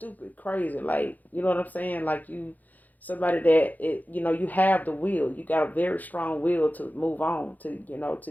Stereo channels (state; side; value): late; right; 0.082 ms